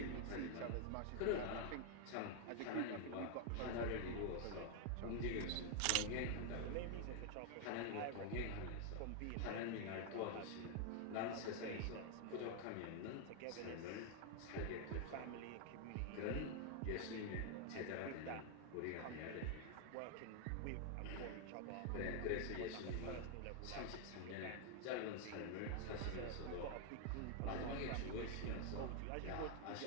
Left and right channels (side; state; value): both; different; correlation 0.00